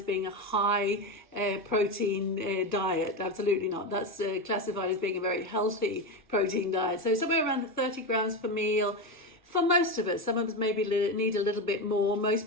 being a high protein diet. Absolutely not. That's classified as being a very healthy protein diet. So somewhere around the 30 grams per meal for most of us. Some of us maybe need a little bit more. Most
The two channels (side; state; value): both; normal; correlation 0.16